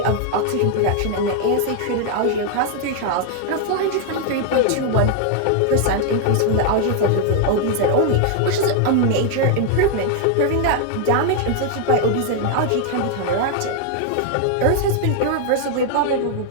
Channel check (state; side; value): different; both; correlation 0.00